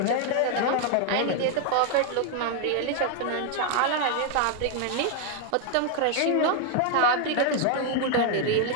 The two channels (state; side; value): different; both; correlation 0.00